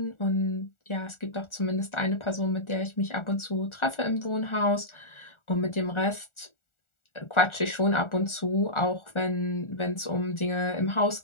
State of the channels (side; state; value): right; late; 1.4 ms